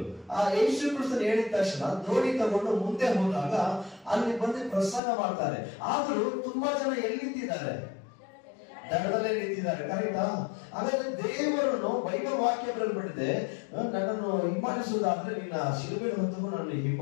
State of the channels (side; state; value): right; drops out; at 5.0 s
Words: ಆ ಯೇಸು ಕ್ರಿಸ್ತನು ಹೇಳಿದ ತಕ್ಷಣ ದೋಣಿ ತಗೊಂಡು ಮುಂದೆ ಹೋದಾಗ ಅಲ್ಲಿ ಬಂದು ಪ್ರಸಂಗ ಮಾಡ್ತಾರೆ. ಆದ್ರೂ ತುಂಬಾ ಜನ ಎಲ್ಲಿ ನಿಂತಿದ್ದಾರೆ? ದಡದಲ್ಲೇ ನಿಂತಿದ್ದಾರೆ. ಕರೆಕ್ಟಾ? ಹಾಗಾದ್ರೆ ದೇವರನ್ನು ಬೈಬಲ್ ವಾಕ್ಯ ಬರೆದ್ಬಿಟ್ಟಿದೆ, ನನ್ನನ್ನು ಹಿಂಬಾಲಿಸುವುದಾದ್ರೆ ನಿನ್ನ ಶಿಲುಬೆಯನ್ನು ಹೊತ್ತು ನನ್ನನ್ನು